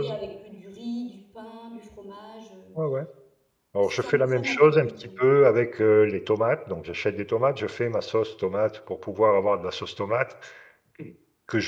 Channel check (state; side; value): identical; both; correlation 1.00